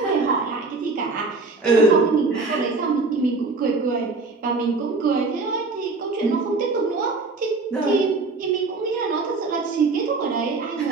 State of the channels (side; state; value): left; quieter; 3.9 dB